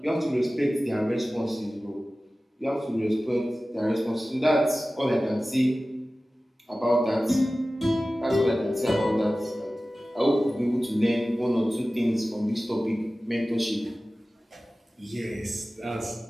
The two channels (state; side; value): normal; both; correlation 0.96